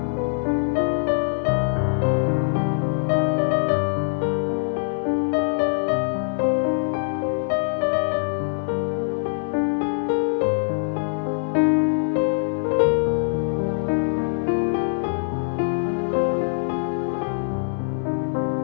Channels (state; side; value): silent; right; 61 dB below the other